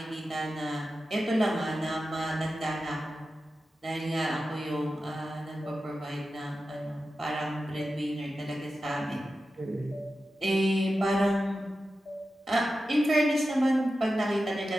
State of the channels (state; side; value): normal; both; correlation 0.92